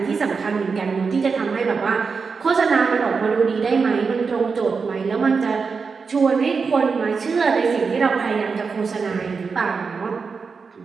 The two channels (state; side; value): quieter; left; 5.1 dB